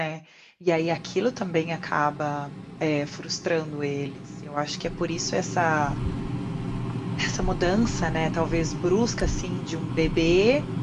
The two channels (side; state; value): both; identical; correlation 1.00